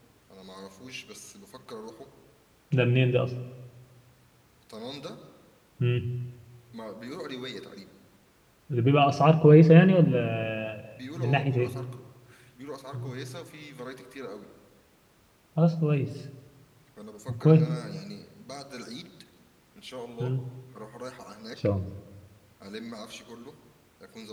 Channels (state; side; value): identical; both; correlation 1.00